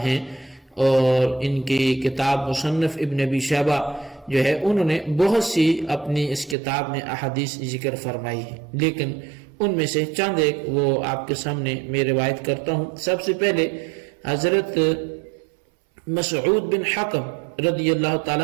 ہیں، اور ان کی کتاب مصنف ابن ابی شیبہ جو ہے انہوں نے بہت سی اپنی اس کتاب میں احادیث ذکر فرمائی ہے، لیکن ان میں سے چند ایک وہ آپ کے سامنے میں روایت کرتا ہوں۔ سب سے پہلے حضرت مسعود بن حکم رضی اللہ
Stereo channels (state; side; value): drops out; left; at 6.6 s